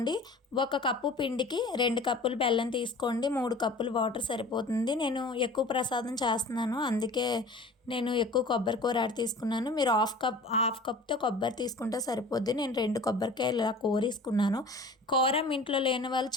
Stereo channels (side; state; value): right; quieter; 3.1 dB